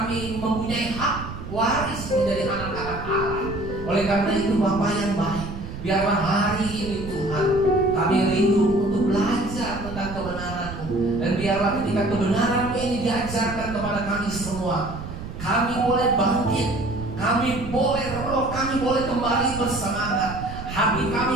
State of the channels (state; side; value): noise; right; rumble, 10 dB below the sound